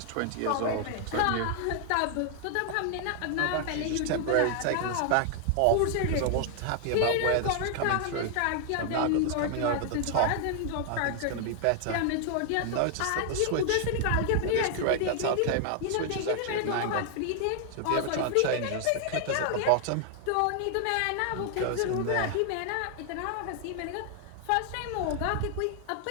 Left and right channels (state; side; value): different; both; correlation 0.00